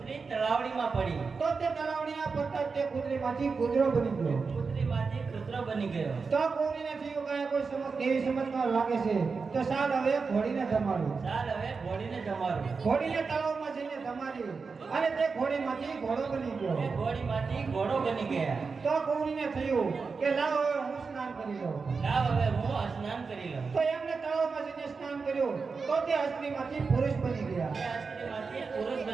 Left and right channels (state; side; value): quieter; left; 4.8 dB